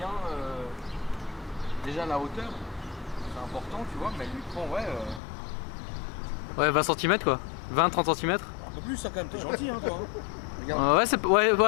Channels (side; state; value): right; drops out; at 5.2 s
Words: déjà la hauteur, c'est important tu vois, mais elle lui prend Ouais, 20 cm quoi. 20-30 cm. un peu plus ça quand même, t'es gentil hein toi. Regarde. Ouais, c'est. Ouais,